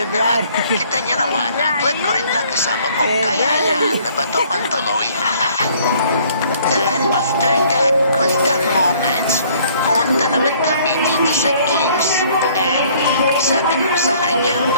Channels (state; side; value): inverted; both; correlation -0.59